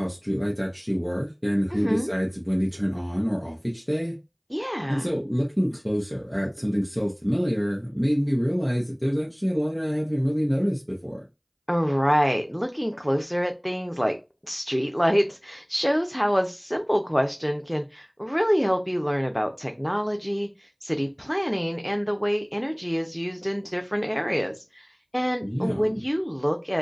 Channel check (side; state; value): both; identical; correlation 1.00